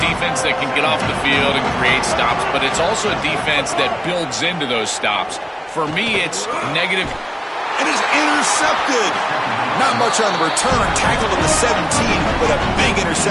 defense that can get off the field and create stops, but it's also a defense that builds into those stops. For me, it's negative. It is intercepted. Not much on the return. Tackled at the 17, but a big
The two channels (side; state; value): both; identical; correlation 1.00